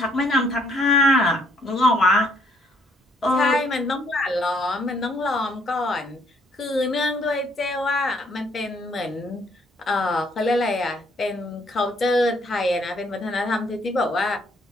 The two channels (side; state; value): both; normal; correlation 0.66